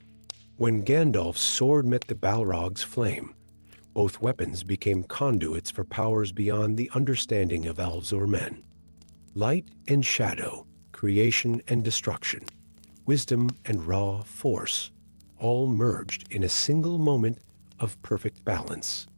When Gandalf's sword met the Balrog's flame, both weapons became conduits for powers beyond the understanding of elves or men. Light and shadow, creation and destruction, wisdom and raw force, all merged in a single moment of perfect balance.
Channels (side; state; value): both; inverted; correlation -1.00